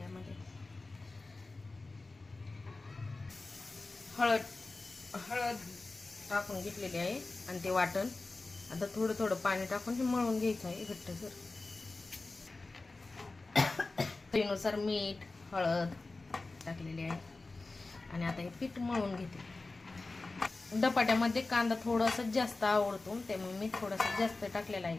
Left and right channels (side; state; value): right; quieter; 3.4 dB